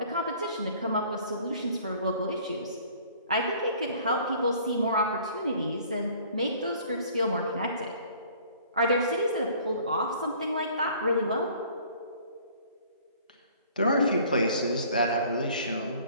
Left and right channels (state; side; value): inverted; both; correlation -0.53